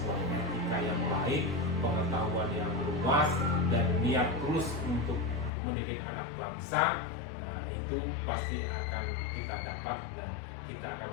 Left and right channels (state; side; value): drops out; right; at 5.5 s